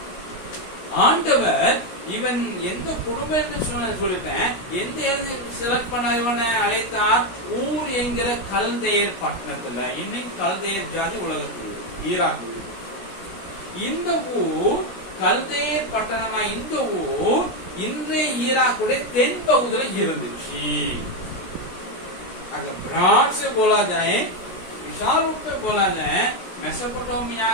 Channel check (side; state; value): right; late; 16 ms